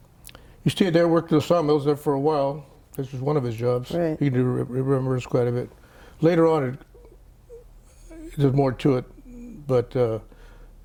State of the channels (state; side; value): identical; both; correlation 1.00